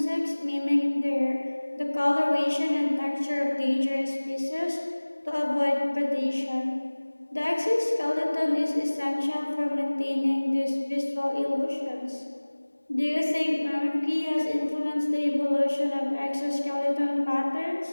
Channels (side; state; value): both; inverted; correlation -1.00